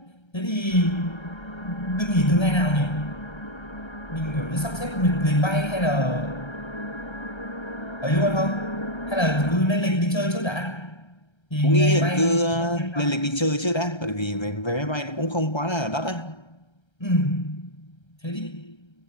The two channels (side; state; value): right; late; 1.3 ms